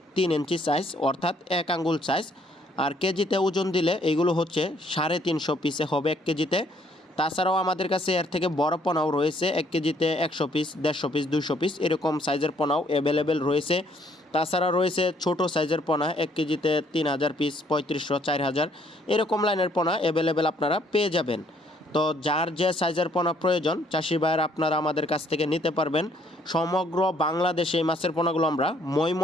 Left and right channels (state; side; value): normal; both; correlation 0.65